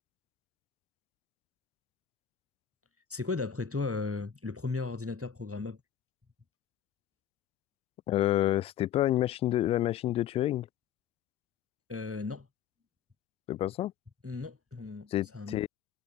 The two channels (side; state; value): right; quieter; 9.8 dB